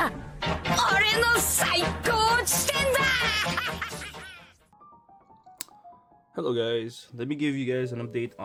俺の最高地点だ Hello guys, let me give you guys an update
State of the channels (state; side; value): identical; both; correlation 1.00